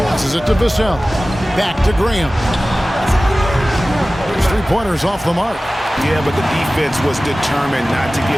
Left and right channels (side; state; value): both; normal; correlation 0.97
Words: Passes it to Vassell. Back to Graham. His three-pointers off the mark. Yeah, but the defense was determined not to